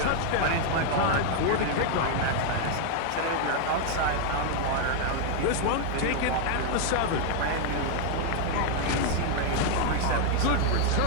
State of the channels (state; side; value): different; both; correlation 0.00